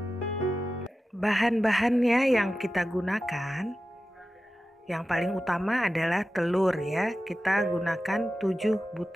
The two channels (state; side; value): normal; both; correlation 0.93